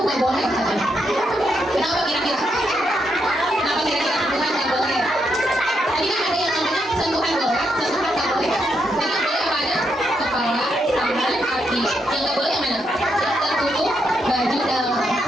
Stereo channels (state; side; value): normal; both; correlation 0.80